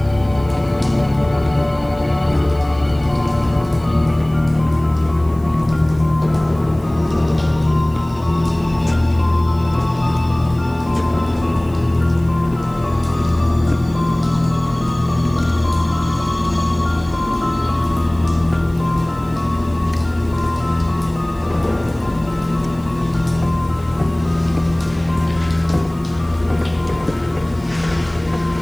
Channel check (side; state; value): left; noise; hiss, 29 dB below the sound